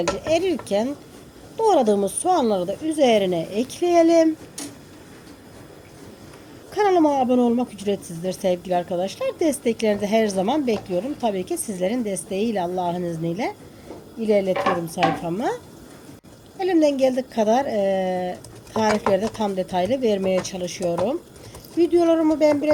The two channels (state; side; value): identical; both; correlation 1.00